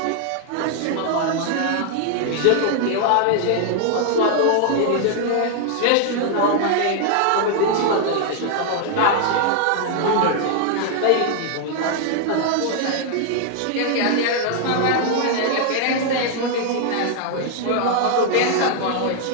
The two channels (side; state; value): both; different; correlation 0.00